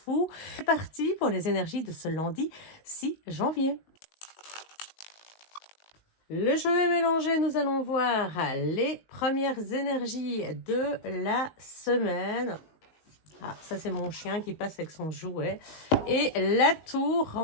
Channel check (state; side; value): late; right; 19 ms